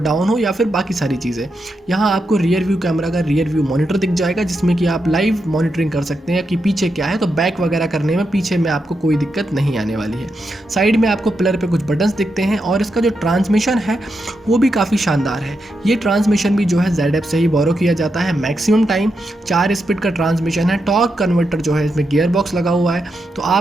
डाउन हो, या फिर बाकी सारी चीज़ें। यहाँ आपको रियर व्यू कैमरा का रियर व्यू मॉनिटर दिख जाएगा, जिसमें कि आप लाइव मॉनिटरिंग कर सकते हैं कि पीछे क्या है। तो बैक वगैरह करने में पीछे में आपको कोई दिक्कत नहीं आने वाली है। साइड में आपको पिलर पे कुछ बटन्स दिखते हैं, और इसका जो ट्रांसमिशन है वो भी काफ़ी शानदार है। ये ट्रांसमिशन भी जो है ZF से ही बोरो किया जाता है। मैक्सिमम टाइम 4 स्पीड का ट्रांसमिशन है। टॉर्क कन्वर्टर जो है इसमें गियर बॉक्स लगा हुआ है, तो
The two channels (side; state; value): both; normal; correlation 0.85